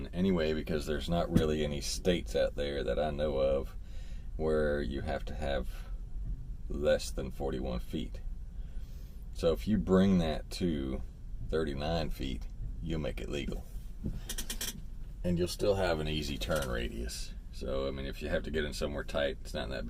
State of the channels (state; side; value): identical; both; correlation 1.00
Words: anyway, because there's not really any states out there that I know of where you have to have less than 41 feet. So if you bring that to 39 feet, you'll make it legal. And you'll still have an easy turn radius. So, I mean, if you have to get in somewhere tight, it's not that